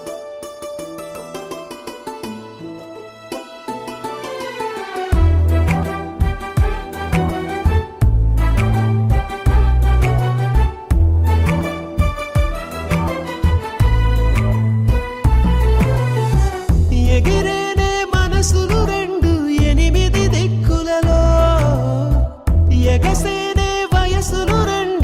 ఎగిరేనే మనసులు రెండు ఎనిమిది దిక్కులలో ఎగసేనే వయసులు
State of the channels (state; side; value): identical; both; correlation 1.00